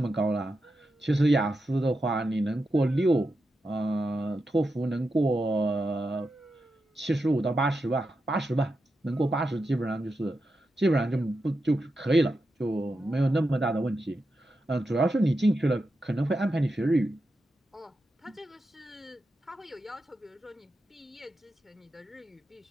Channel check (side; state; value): both; normal; correlation 0.88